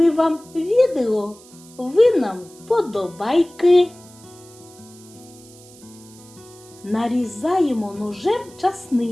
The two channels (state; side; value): noise; right; hiss, 23 dB below the sound